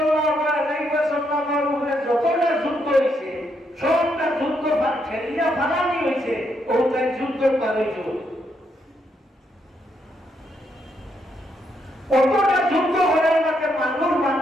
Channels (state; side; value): normal; both; correlation 0.77